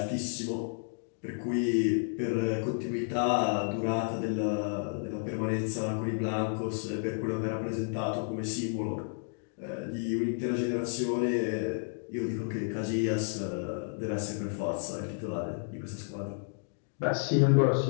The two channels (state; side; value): silent; right; digital silence